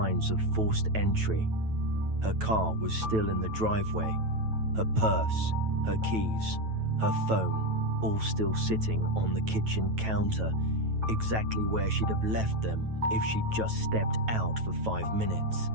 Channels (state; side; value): late; left; 9.1 ms